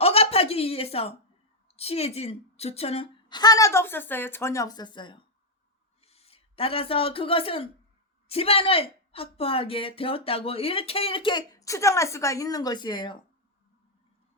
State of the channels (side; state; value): both; normal; correlation 0.00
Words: 위해서 취해진 조처는 하나도 없었어요. 전혀 없었어요. 따라서 그것은 집안을 확보하게 되었다고 이렇게 추정할 수가 있는 것이에요.